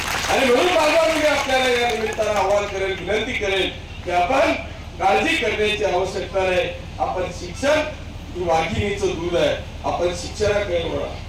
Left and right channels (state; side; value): identical; both; correlation 1.00